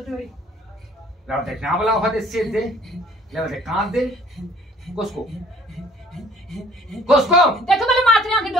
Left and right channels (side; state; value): both; normal; correlation 0.54